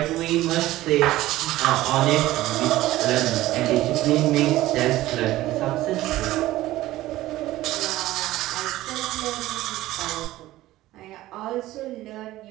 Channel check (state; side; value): quieter; left; 16.1 dB